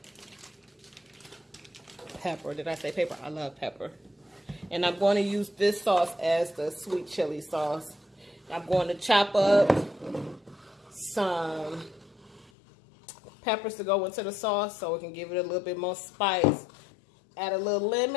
pepper. Did I say pepper? I love pepper. And I'm going to use this sauce as the sweet chili sauce. I'm going to chop up some peppers to go into the sauce so it can give it a little bit more spice. Add a little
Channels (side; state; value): right; drops out; at 12.5 s